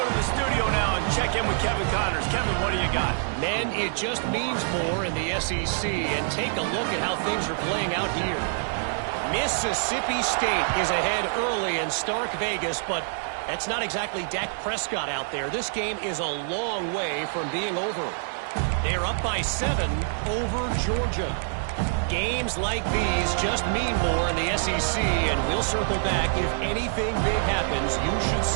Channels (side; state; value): left; silent; digital silence